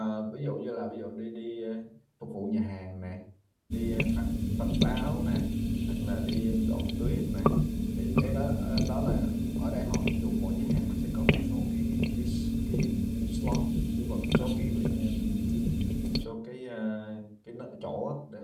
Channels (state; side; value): identical; both; correlation 1.00